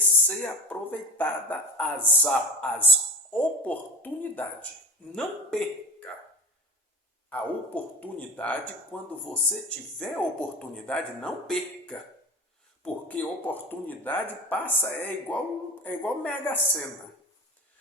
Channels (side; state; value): both; normal; correlation 0.33